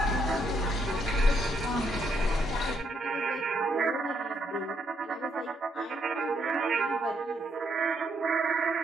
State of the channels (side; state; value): both; normal; correlation 0.74